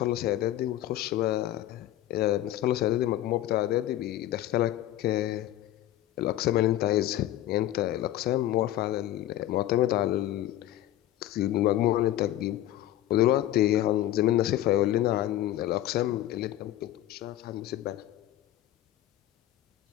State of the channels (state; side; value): quieter; right; 13.8 dB